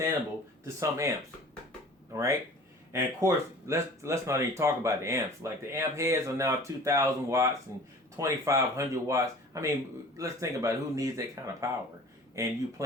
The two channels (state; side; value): normal; both; correlation 0.44